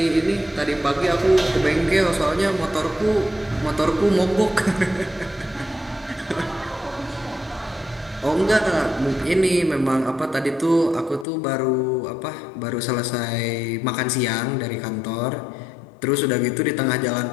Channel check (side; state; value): right; drops out; at 11.2 s